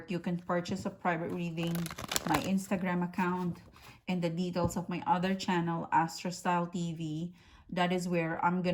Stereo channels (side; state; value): both; identical; correlation 1.00